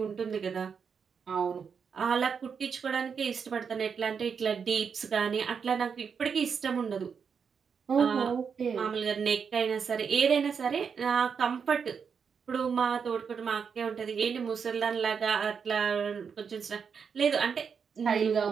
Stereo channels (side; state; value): left; quieter; 6.4 dB